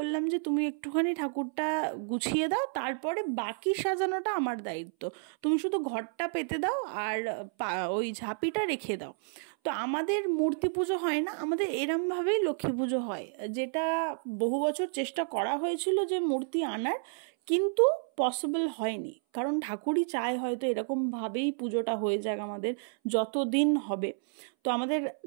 যে তুমি একটুখানি ঠাকুরটা গুছিয়ে দাও, তারপরে বাকি সাজানোটা আমার দায়িত্ব, তুমি শুধু ঘরটা পেতে দাও আর ওই ঝাঁপিটা রেখে দাও। তো আমাদের মূর্তি পুজো হয় না, আমাদের এরমভাবেই লক্ষ্মী পুজো হয়, যেটা বহু বছর চেষ্টা করা হয়েছিল যে মূর্তি আনার, কিন্তু পসিবল হয়নি, কারণ ঠাকুরই চায় হয়তো এরকমভাবেই পুজোটা হয়ে যাক আমাদের যতদিন হবে। তো আমাদের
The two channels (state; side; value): silent; left; 57 dB below the other